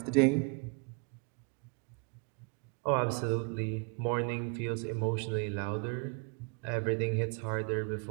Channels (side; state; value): left; quieter; 36.7 dB